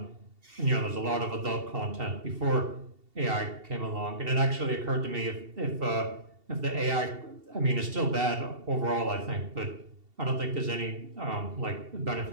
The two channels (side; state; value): left; late; 2.7 ms